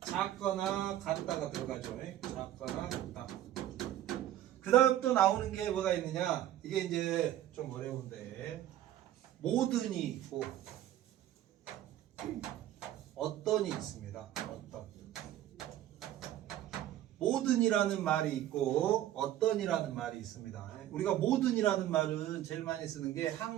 작거나 같다가 들어가죠. 작거나 같다. 그 다음 또 나오는 게 뭐가 있느냐? 이게 이제 좀 어려운데, 모든이 있고 어떤이 있습니다. 어떤. 모든이라는 말이 있고 어떤이라는 말이 있습니다. 우리가 모든이라는 말은 제일 많이 쓰는 게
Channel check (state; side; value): quieter; left; 12.8 dB